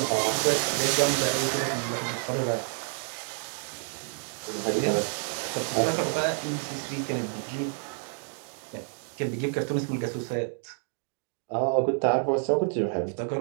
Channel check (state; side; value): silent; left; 56 dB below the other